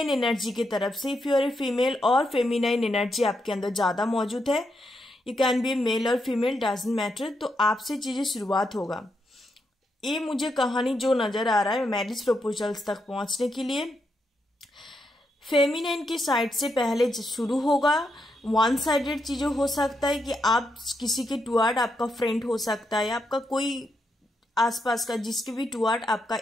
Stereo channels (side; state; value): both; normal; correlation 0.82